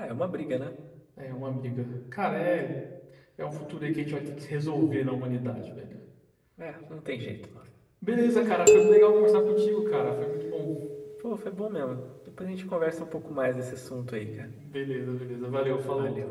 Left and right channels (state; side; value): identical; both; correlation 1.00